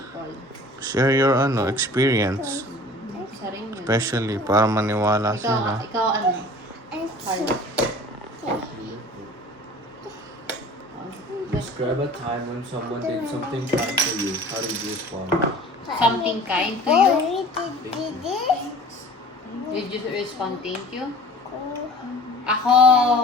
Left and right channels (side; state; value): both; normal; correlation 0.45